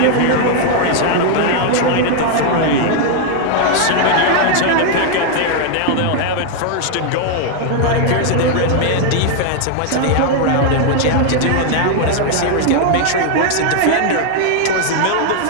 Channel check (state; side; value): different; both; correlation 0.00